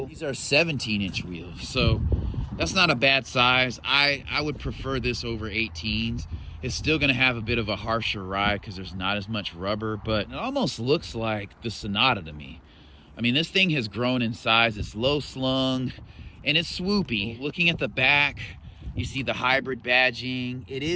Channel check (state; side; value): identical; both; correlation 1.00